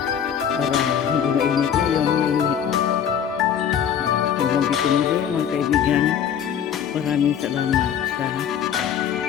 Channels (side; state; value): right; quieter; 8.6 dB